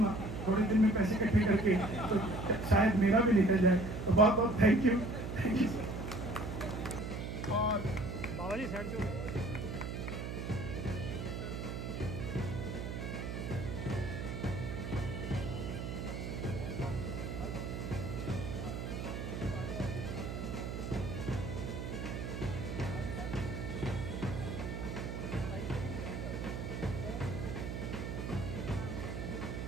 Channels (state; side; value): noise; right; hum, 5 dB below the sound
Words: थोड़े दिन में पैसे इकट्ठे करके, तो शायद मेरा भी निकल जाए। तो बहुत बहुत थैंक यू। और बाबा जी साइड से